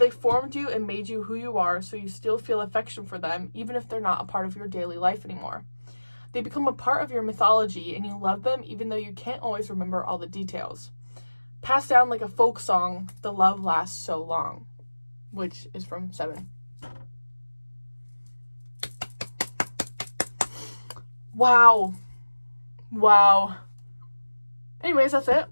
formed you and made you who you are, so you still feel affection for them, even if they're not a part of your daily life anymore. They become a part of your mythology, and you love them even though you can't always remember all the details. Passed down like a folk song, the love lasts so long. Which is from 7. Wow. Anyways, that's it.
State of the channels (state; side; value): inverted; both; correlation -1.00